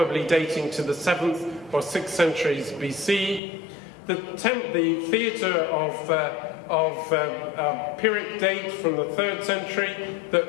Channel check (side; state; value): right; drops out; at 3.4 s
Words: dating to the 7th or 6th centuries BC. The theatre of Pyrrhic date from the 3rd century that